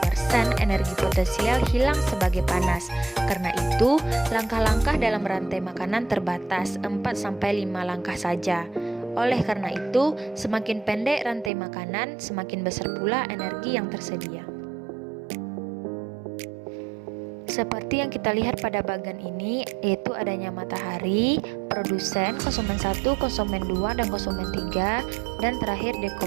energi potensial hilang sebagai panas. Karena itu, langkah-langkah dalam rantai makanan terbatas, 4-5 langkah saja. Oleh karena itu, semakin pendek rantai makanan, semakin besar pula energi yang tersedia. Seperti yang kita lihat pada bagian ini, yaitu adanya matahari, produsen, konsumen 1, konsumen 2, dan konsumen 3, dan terakhir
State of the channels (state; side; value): drops out; left; at 11.5 s